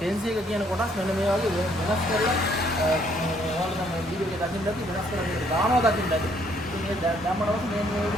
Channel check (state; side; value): normal; both; correlation 0.66